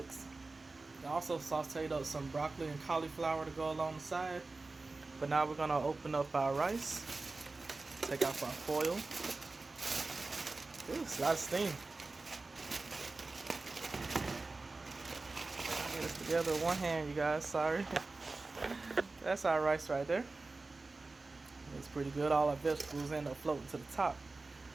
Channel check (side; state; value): left; quieter; 3.5 dB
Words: I also sauteed up some broccoli and cauliflower to go along the side. But now we're gonna open up our rice. Take off our foil. Ooh, it's a lot of steam. Get this together with one hand, you guys. Sorry. That's our rice right there. It's pretty good. All our vegetables end up floating to the top.